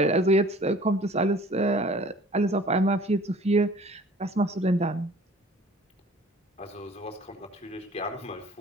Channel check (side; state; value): both; normal; correlation 0.49